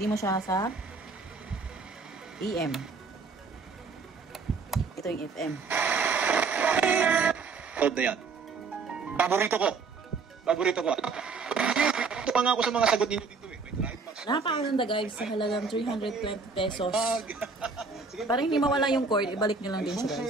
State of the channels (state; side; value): quieter; left; 4.5 dB